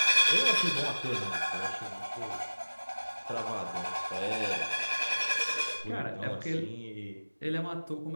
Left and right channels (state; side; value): inverted; both; correlation -1.00